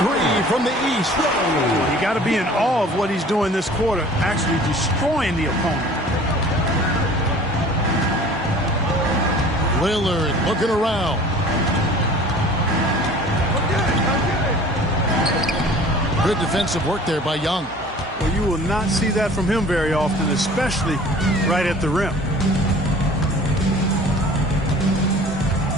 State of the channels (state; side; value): normal; both; correlation 0.46